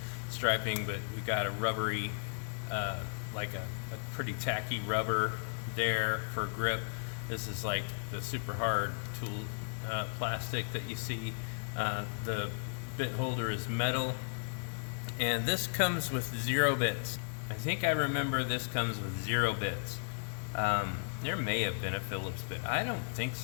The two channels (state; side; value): silent; right; digital silence